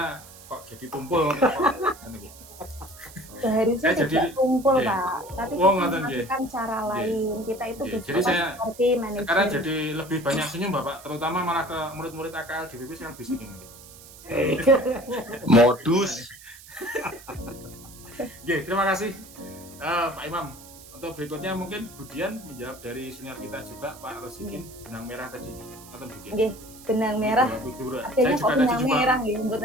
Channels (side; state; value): right; noise; hiss, 19 dB below the sound